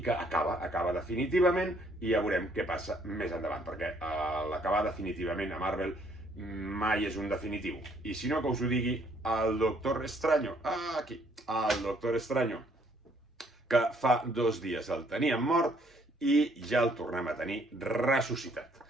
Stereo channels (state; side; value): normal; both; correlation 0.66